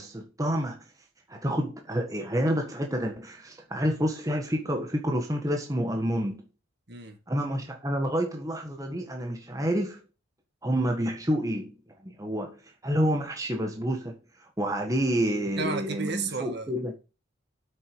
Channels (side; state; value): both; normal; correlation 0.75